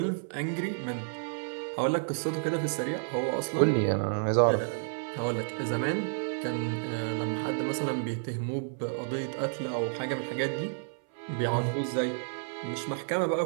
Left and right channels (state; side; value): silent; left; 57 dB below the other